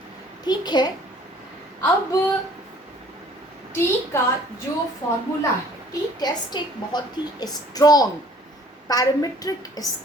ठीक है, अब टी का जो फॉर्मूला है, टी टेस्ट एक बहुत ही strong parametric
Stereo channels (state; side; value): normal; both; correlation 0.54